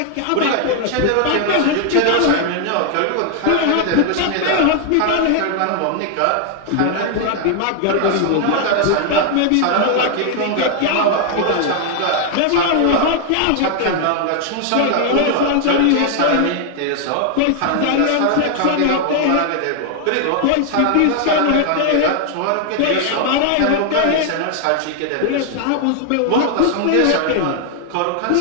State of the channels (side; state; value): both; different; correlation 0.00